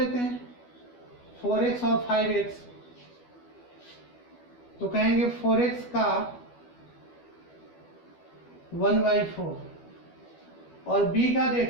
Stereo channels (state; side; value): late; right; 12 ms